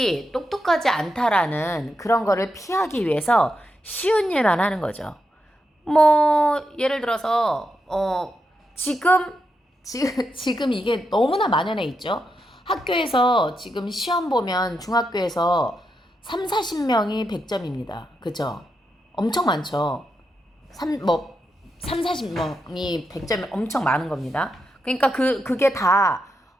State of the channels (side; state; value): both; normal; correlation 0.85